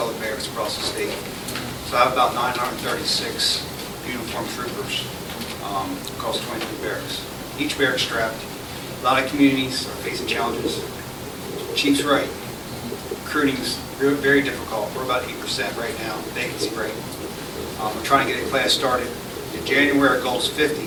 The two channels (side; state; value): both; identical; correlation 1.00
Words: the barracks across the state. So I have about 936 uniformed troopers across 23 barracks. Each barrack strapped. A lot of communities are facing challenges. Chief's right. Recruiting is very difficult. We're about 8% right now, vacancy rate. We're trying to get a class started. In January, our goal is 50.